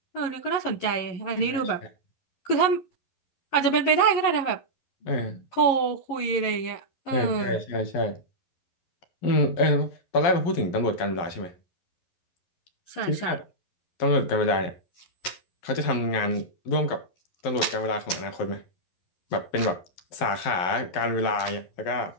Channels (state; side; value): late; right; 11 ms